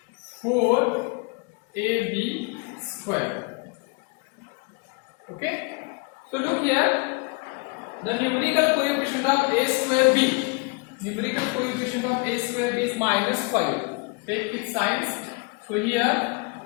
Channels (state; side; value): quieter; right; 30.1 dB